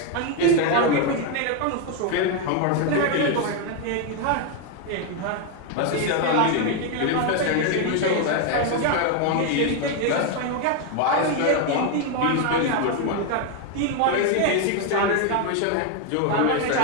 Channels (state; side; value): different; both; correlation 0.01